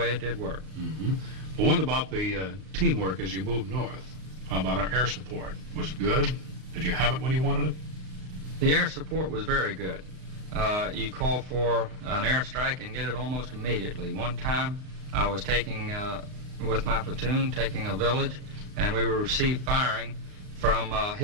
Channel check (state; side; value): late; left; 38 ms